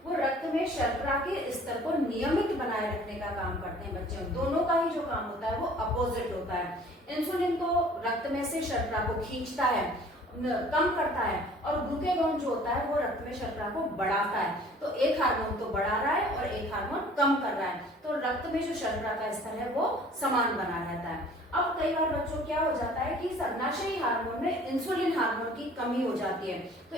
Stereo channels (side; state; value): both; normal; correlation 0.51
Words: वो रक्त में शर्करा के स्तर को नियमित बनाए रखने का काम करते हैं बच्चों। दोनों का ही जो काम होता है वो अपोजिट होता है। इंसुलिन तो रक्त में से शर्करा को खींचता है, कम करता है और ग्लूकेगॉन जो होता है वो रक्त में शर्करा को बढ़ाता है। तो एक हार्मोन तो बढ़ा रहा है और एक हार्मोन कम कर रहा है, तो रक्त में जो शर्करा का स्तर है वो समान बना रहता है। अब कई बार बच्चों क्या हो जाता है कि सर्वनाशी हार्मोन में इंसुलिन हार्मोन की कमी हो जाती है। तो